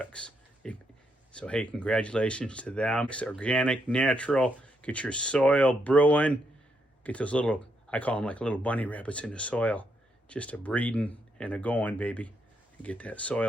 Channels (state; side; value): normal; both; correlation 0.78